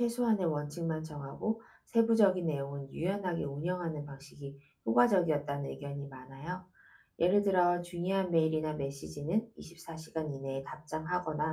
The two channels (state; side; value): identical; both; correlation 1.00